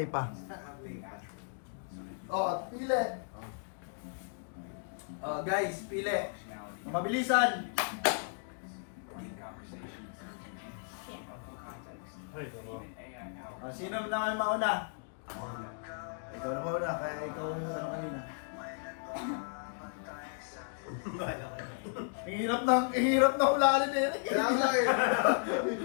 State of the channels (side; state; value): right; silent; digital silence